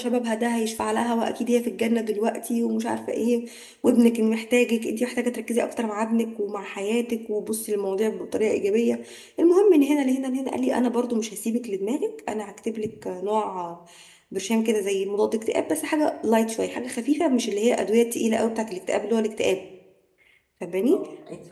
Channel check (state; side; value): identical; both; correlation 1.00